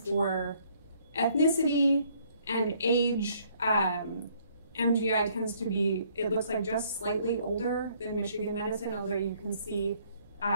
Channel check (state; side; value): inverted; both; correlation -0.64